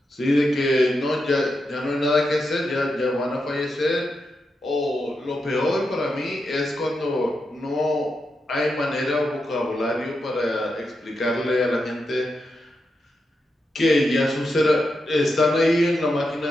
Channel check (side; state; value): both; normal; correlation 0.86